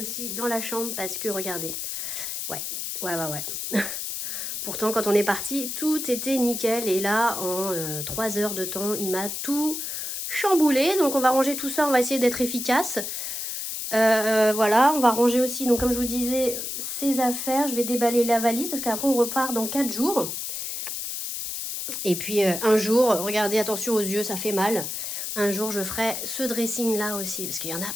dans la chambre parce que, regardez. Ouais. Pourtant, quand on est parti, tout était nickel. Et là, en 3 heures de temps, il m'a tout chamboulé. Donc, on va ranger tout ça. On va essayer d'être efficace. Voilà, on va ranger aussi, donc comme je vous disais, ces affaires. Je vais déballer la valise parce qu'après, on repart dans 4 jours. Et puis, un jour, regardez, attention aux yeux, ça fait mal. Un jour, je ferai ce dressing-là aussi, parce qu'il y en a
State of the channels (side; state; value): left; noise; hiss, 4 dB below the sound